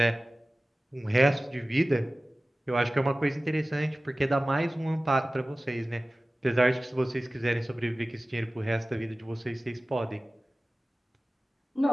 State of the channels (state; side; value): normal; both; correlation 0.97